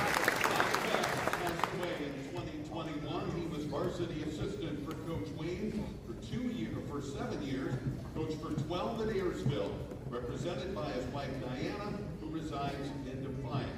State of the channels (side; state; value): both; identical; correlation 1.00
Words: Passed away in 2021. He was varsity assistant for Coach Wayne for 7 years, coached for 12 at Ayersville, represented by his wife Diana, who resides in